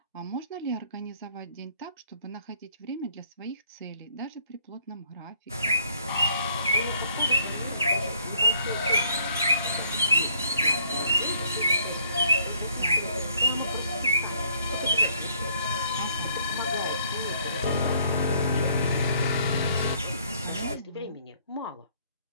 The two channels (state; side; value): inverted; both; correlation -0.64